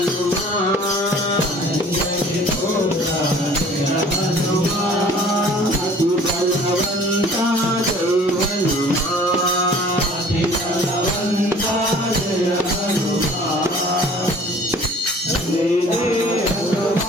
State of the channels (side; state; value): both; normal; correlation 0.50